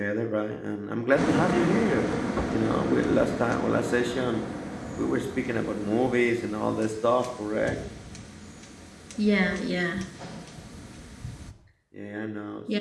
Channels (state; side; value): identical; both; correlation 1.00